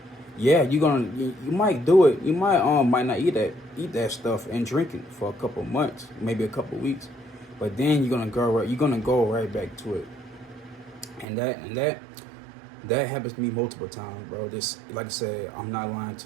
yeah, you might do it. You might not eat that stuff and drink it for a couple months, maybe a couple weeks, but then you're gonna go right back to it, and that happens to me multiple times, bro. This, like I said, I'm not lying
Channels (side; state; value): left; drops out; at 11.2 s